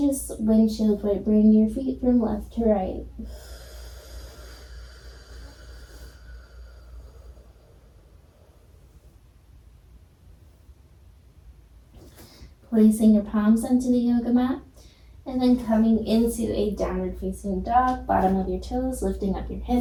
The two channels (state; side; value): identical; both; correlation 1.00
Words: just windshield wiper, bring your feet from left to right. Placing your palms onto the yoga mat. And then coming into a downward facing dog, bottom of your toes, lifting up your